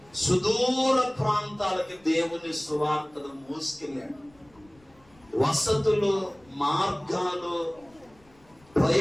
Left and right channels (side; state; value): left; noise; rumble, 29 dB below the sound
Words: సుదూర ప్రాంతాలకి దేవుని సువార్తను మోసుకెళ్ళాడు. వసతులు, మార్గాలు,